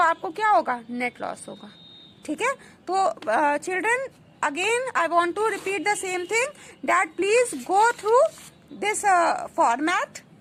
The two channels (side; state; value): both; identical; correlation 1.00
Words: आपको क्या होगा, नेट लॉस होगा। ठीक है, तो children again I want to repeat the same thing that please go through this format,